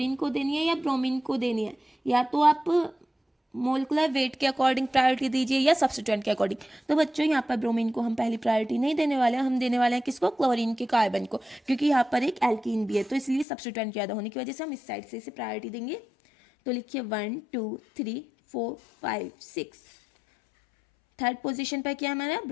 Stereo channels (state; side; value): drops out; right; at 13.5 s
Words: को देनी है या ब्रोमीन को देनी है, या तो आप मोलिकुलर वेट के अकॉर्डिंग प्रायोरिटी दीजिए या सब्स्टिट्यूएंट के अकॉर्डिंग। तो बच्चों यहाँ पर ब्रोमीन को हम पहली प्रायोरिटी नहीं देने वाले हैं, हम देने वाले हैं किसको? क्लोरीन के कार्बन को, क्योंकि यहाँ पर एक एल्कीन भी है, तो इसलिए सब्स्टिट्यूएंट ज़्यादा होने की वजह से हम इस साइड से इसे प्रायोरिटी देंगे। तो लिखिए 1 2 3 4 5 6। थर्ड पोजिशन पर क्या हमारा?